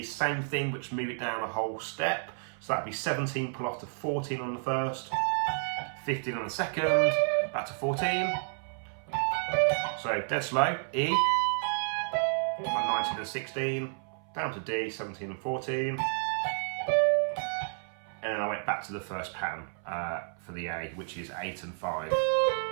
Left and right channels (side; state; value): left; silent; 57 dB below the other